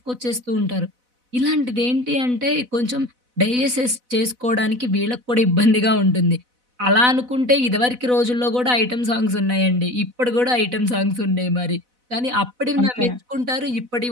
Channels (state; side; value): late; left; 4.0 ms